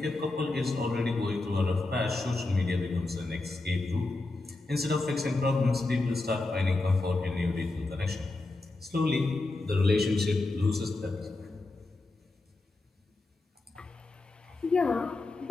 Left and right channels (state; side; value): quieter; right; 3.1 dB